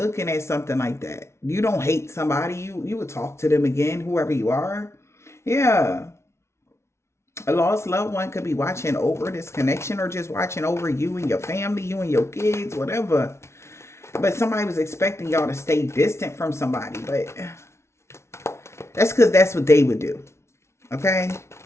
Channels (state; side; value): late; right; 0.13 ms